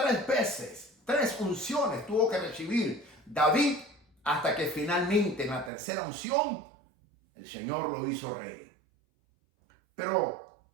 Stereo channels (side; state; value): left; drops out; at 5.7 s